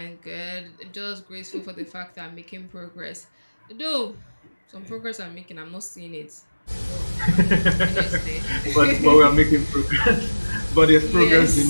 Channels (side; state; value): both; inverted; correlation -1.00